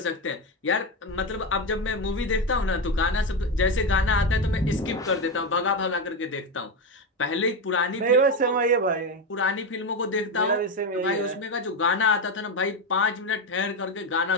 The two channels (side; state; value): both; normal; correlation 0.12